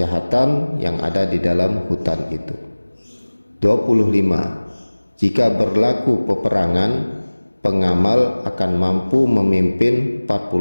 yang ada di dalam hutan itu. 25. Jika berlaku peperangan, pengamal akan mampu memimpin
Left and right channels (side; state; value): both; inverted; correlation -1.00